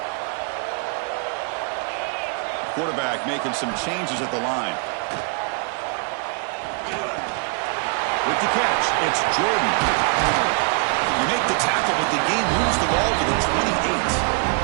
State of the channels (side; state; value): left; quieter; 37.6 dB